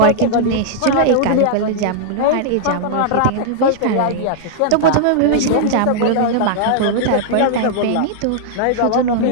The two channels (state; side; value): different; both; correlation -0.01